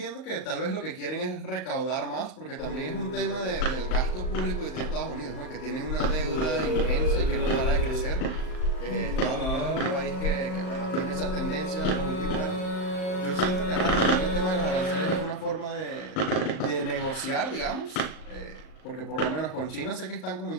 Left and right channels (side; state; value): right; late; 39 ms